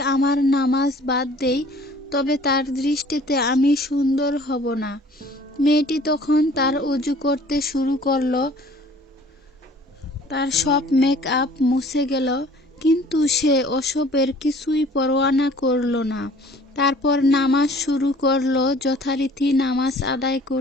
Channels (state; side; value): normal; both; correlation 0.52